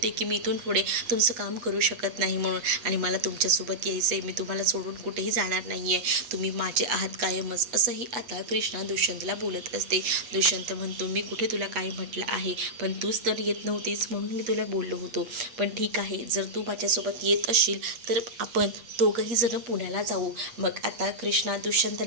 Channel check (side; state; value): left; late; 8.4 ms